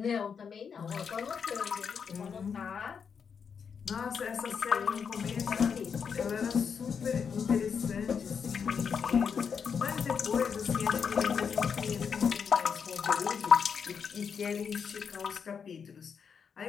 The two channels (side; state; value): right; quieter; 6.5 dB